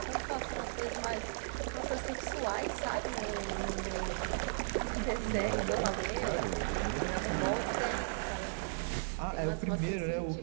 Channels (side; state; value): left; silent; digital silence